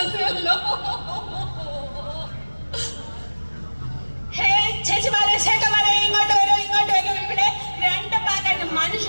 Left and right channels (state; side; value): inverted; both; correlation -1.00